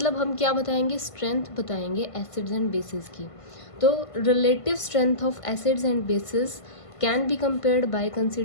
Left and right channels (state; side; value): late; right; 1.5 ms